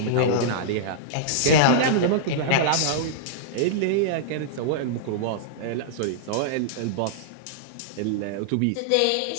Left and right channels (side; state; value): both; different; correlation -0.02